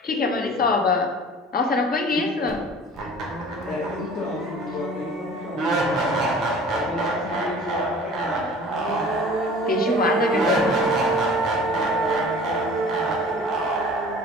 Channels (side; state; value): both; normal; correlation 0.45